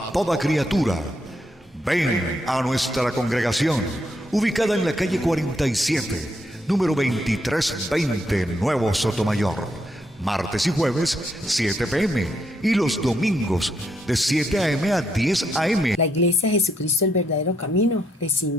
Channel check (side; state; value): both; normal; correlation 0.76